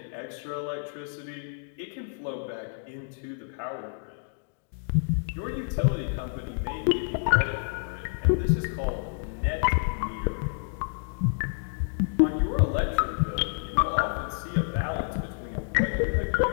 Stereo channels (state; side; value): silent; right; digital silence